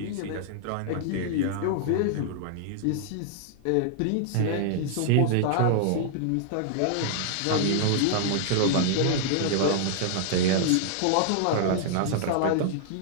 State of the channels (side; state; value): both; different; correlation -0.01